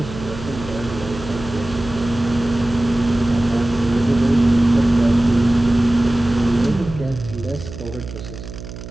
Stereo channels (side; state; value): right; noise; hum, 12 dB below the sound